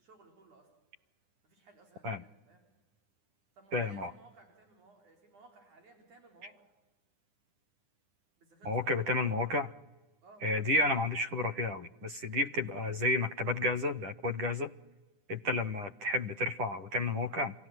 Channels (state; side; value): late; left; 10 ms